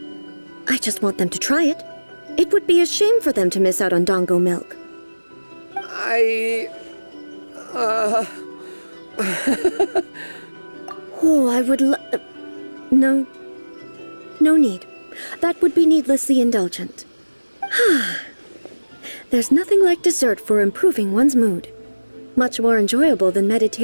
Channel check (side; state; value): both; inverted; correlation -1.00